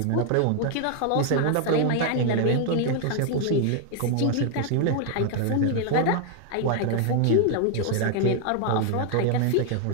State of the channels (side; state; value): both; different; correlation 0.00